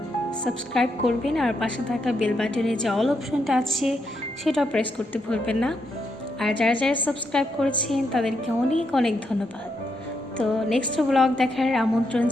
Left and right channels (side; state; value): both; normal; correlation 0.80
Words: সাবস্ক্রাইব করবেন, আর পাশে থাকা বেল বাটনে যে অল অপশনটা আছে সেটাও প্রেস করতে ভুলবেন না। আর যারা যারা সাবস্ক্রাইব করেছেন তাদেরকে অনেক অনেক ধন্যবাদ। তো নেক্সট ব্লগ দেখার আমন্ত্রণ